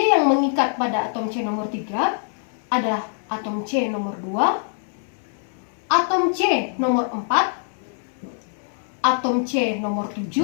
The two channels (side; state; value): right; silent; 63 dB below the other